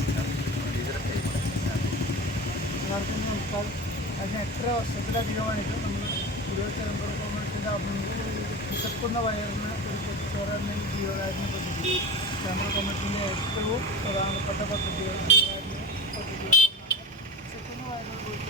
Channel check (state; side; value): normal; both; correlation 0.28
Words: ടീച്ചറെ കൈമാറി. എല്ലാവർക്കും നമസ്കാരം. അതിന് 8 വർഷത്തിലധികമായിട്ട് നമ്മൾ ഗുരുവായൂർ ചേംബർ ഓഫ് കൊമേഴ്സിൻ്റെ വിശക്കുന്ന വയറിന് ഒരു പൊതിച്ചോറ് എന്ന ജീവകാരുണ്യ പദ്ധതി ചേംബർ ഓഫ് കൊമേഴ്സിൻ്റെ ഏറ്റവും പ്രധാനപ്പെട്ട പദ്ധതികൾ വിശക്കുന്ന വയറിന്